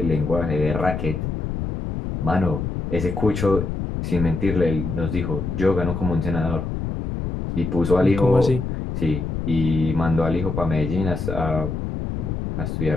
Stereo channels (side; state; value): left; noise; rumble, 4 dB below the sound